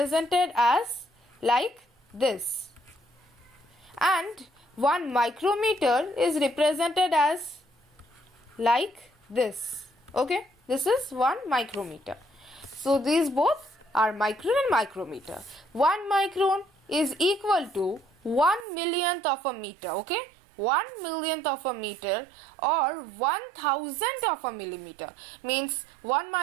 as like this, and 1 micrometer is represented as like this. Okay, this is 1 micrometer. So these both are micron and micrometer. 1 micron is equal to 1 millionth of a meter. Okay, 1 millionth of a meter or 1,000th of a millimeter, means 1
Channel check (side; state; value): left; drops out; at 18.7 s